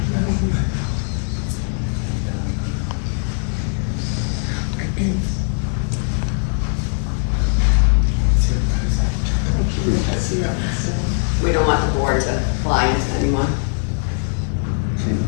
We don't want the board to fly into anyone.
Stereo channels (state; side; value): silent; right; 60 dB below the other